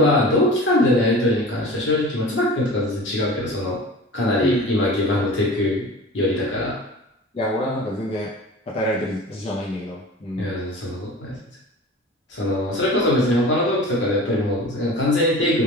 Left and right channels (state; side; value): normal; both; correlation 0.37